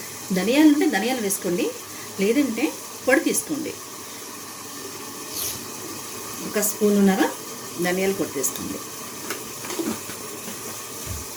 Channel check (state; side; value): identical; both; correlation 1.00